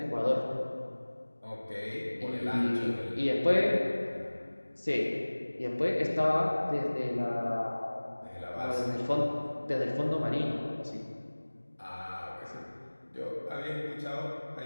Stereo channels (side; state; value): both; inverted; correlation -1.00